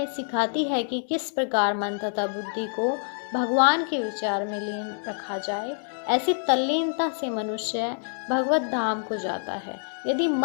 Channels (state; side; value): silent; right; digital silence